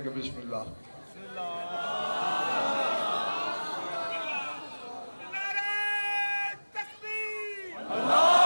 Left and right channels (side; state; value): both; inverted; correlation -1.00